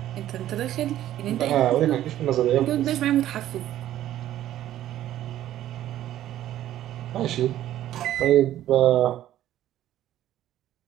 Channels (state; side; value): quieter; left; 12.8 dB